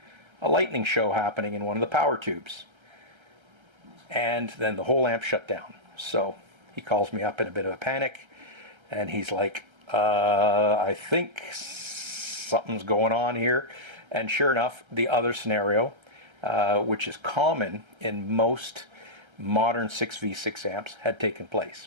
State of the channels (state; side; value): late; left; 1.3 ms